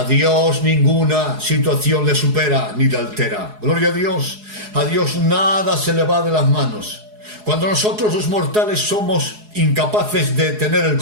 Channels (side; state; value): left; late; 4.7 ms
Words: Dios ninguna situación le supera ni le altera. Gloria a Dios nada se le va de las manos. Cuando nosotros los mortales somos incapaces de tener el